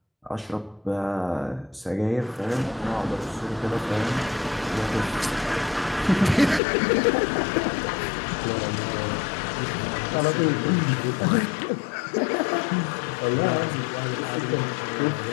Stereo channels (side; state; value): right; drops out; at 6.6 s